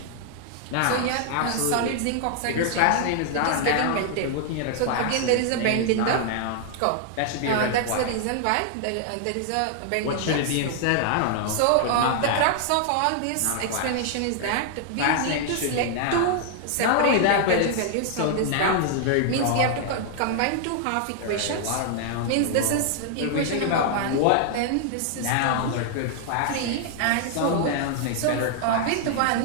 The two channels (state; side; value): different; both; correlation 0.00